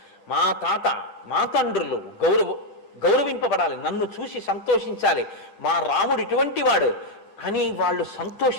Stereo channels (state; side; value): late; right; 10 ms